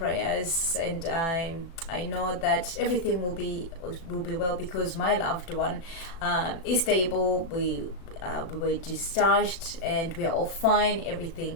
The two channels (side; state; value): right; late; 36 ms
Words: and I know that everything will be well, because my loved one is stable. We were discharged and we're all fine. Everything